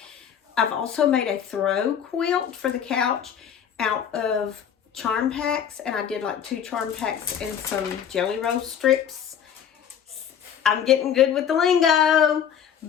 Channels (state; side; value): quieter; right; 8.5 dB